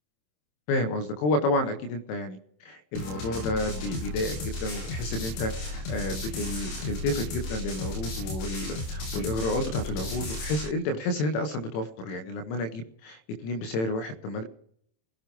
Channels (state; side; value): late; right; 27 ms